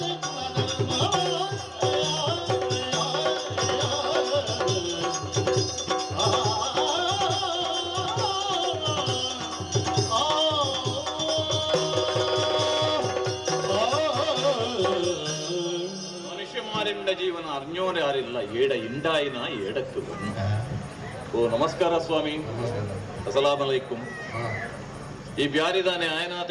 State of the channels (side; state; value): both; identical; correlation 1.00